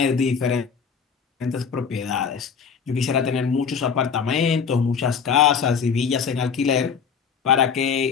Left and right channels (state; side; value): quieter; right; 6.4 dB